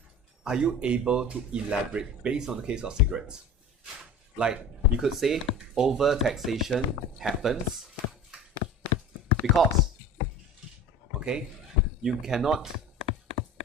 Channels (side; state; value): both; normal; correlation 0.36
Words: Are you able to elaborate based on the case of cigarettes? Like, you could say overtaxation happens because, okay, you cannot,